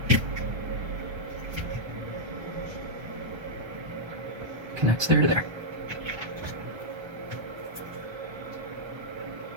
Connects there to there.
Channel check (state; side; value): late; left; 1.3 ms